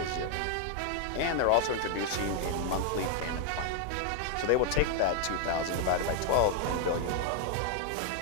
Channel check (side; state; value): both; different; correlation 0.00